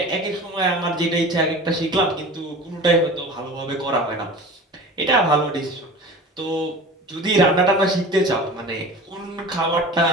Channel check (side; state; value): both; normal; correlation 0.37